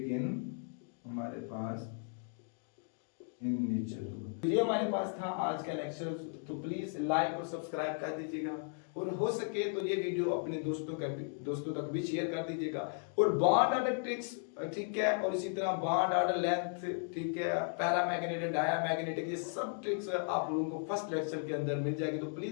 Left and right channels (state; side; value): silent; right; 54 dB below the other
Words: इन हमारे पास in nature. ये हमारे पास था आज का लेक्चर, तो प्लीज लाइक और सब्सक्राइब कर दीजिएगा और हो सके तो ये वीडियो अपने दोस्तों तक भी शेयर कर दीजिएगा। और बॉन्ड ऑर्डर ट्रिक्स, ठीक है, और इसी तरह बॉन्ड ऑर्डर लेंथ, ठीक है, पैरामैग्नेटिक, डायामैग्नेटिक, ये सब ट्रिक्स आप लोगों को फर्स्ट लेक्चर के अंदर मिल जाएगी, तो